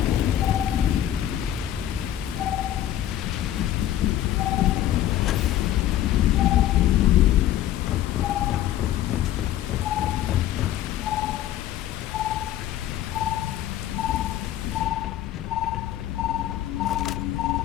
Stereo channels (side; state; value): right; quieter; 12.4 dB